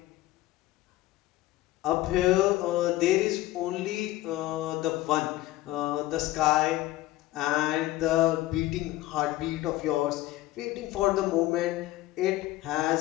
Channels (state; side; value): quieter; right; 16.6 dB